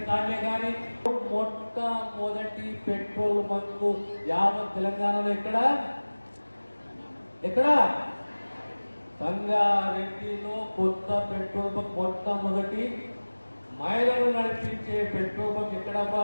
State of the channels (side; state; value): both; inverted; correlation -1.00